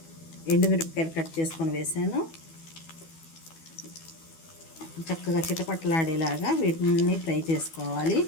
ఎండుమిరపకాయలు కట్ చేసుకొని వేసాను. చక్కగా చిటపట్లాడేలాగా వీటిని ఫ్రై చేసుకోవాలి.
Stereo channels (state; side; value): late; right; 12 ms